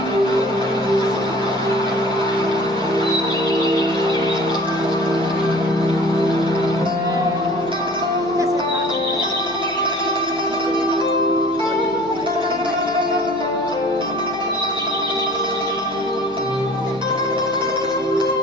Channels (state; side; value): noise; right; hum, 26 dB below the sound